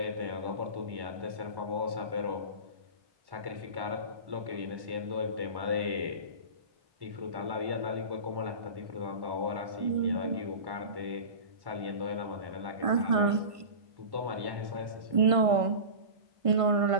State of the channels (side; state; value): left; late; 1.5 ms